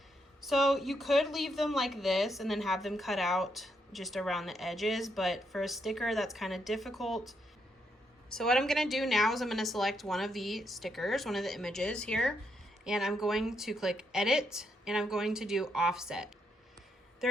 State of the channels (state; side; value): normal; both; correlation 0.78